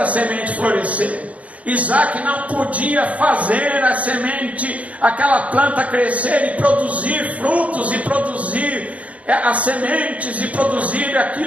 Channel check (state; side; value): late; left; 0.067 ms